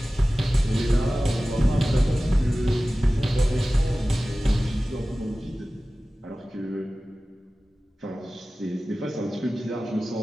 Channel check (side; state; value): both; normal; correlation 0.96